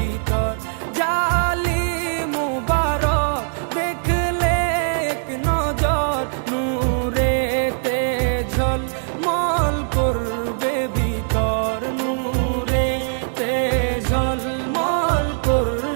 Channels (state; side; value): silent; left; digital silence